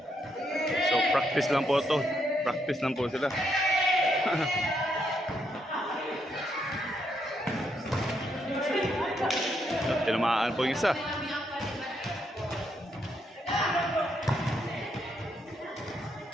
So practice lang po to. Practice lang po sila. Tinamaan po yung isa.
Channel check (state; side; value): normal; both; correlation 0.77